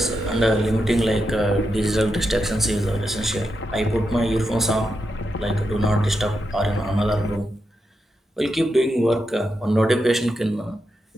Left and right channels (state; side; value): normal; both; correlation 0.86